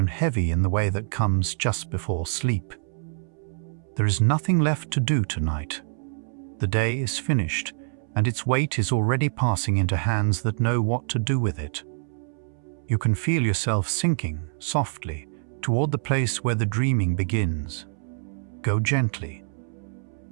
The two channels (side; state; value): left; silent; 61 dB below the other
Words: heavy in the way that comes just before sleep. There is nothing left to do tonight. The day is finished, and its weight is already passing into hands that know what to do with it. You can feel yourself sinking, softly, toward the place where the dreaming begins. Go gently.